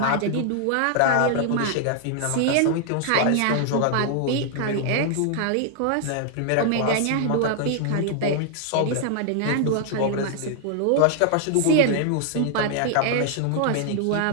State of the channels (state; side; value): different; both; correlation 0.00